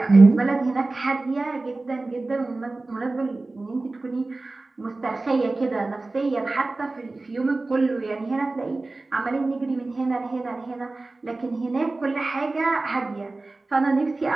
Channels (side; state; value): left; quieter; 3.2 dB